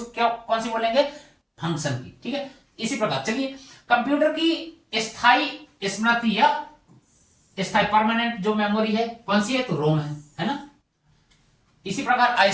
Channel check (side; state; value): both; identical; correlation 1.00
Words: क्या कौन सी बोलेंगे? फंक्शन की। ठीक है, इसी प्रकार चलिए, कंप्यूटर की स्थायी स्मृति या स्थायी परमानेंट जो मेमोरी है कौन सी है? तो रोम है ना। इसी प्रकार